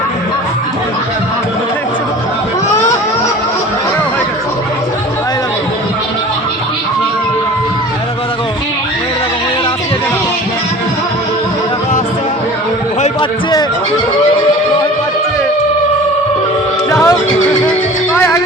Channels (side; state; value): both; normal; correlation 0.42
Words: ভয় পাচ্ছে, ভয় পাচ্ছে। যাও ভাই